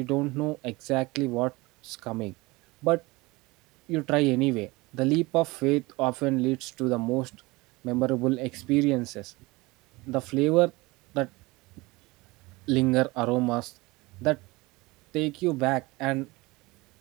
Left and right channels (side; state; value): left; quieter; 22.7 dB